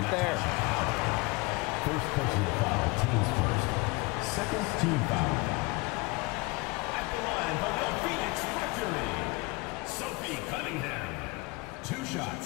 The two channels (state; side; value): quieter; right; 25.6 dB